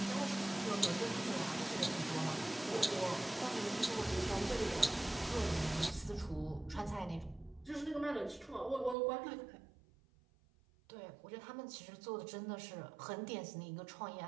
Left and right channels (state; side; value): drops out; left; at 9.0 s